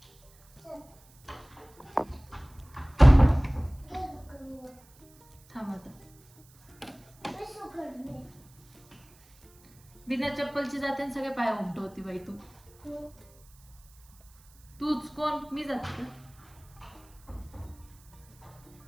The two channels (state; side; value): noise; right; hiss, 28 dB below the sound